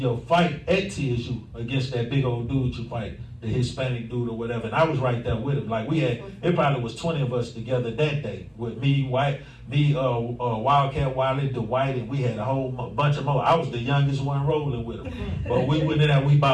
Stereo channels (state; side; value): identical; both; correlation 1.00